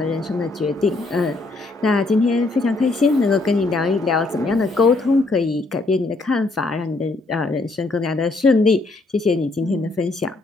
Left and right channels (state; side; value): quieter; right; 3.3 dB